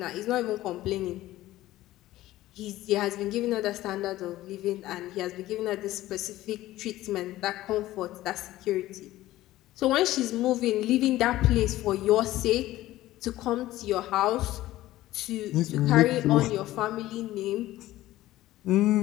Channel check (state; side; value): quieter; right; 15.7 dB